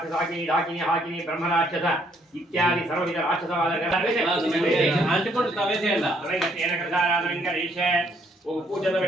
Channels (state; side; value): normal; both; correlation 0.68